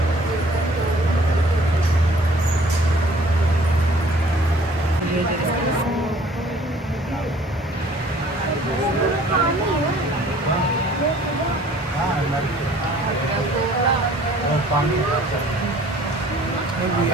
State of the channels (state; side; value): normal; both; correlation 0.54